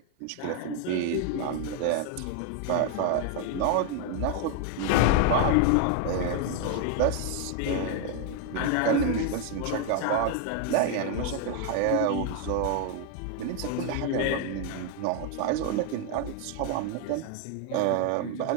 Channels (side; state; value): both; different; correlation 0.00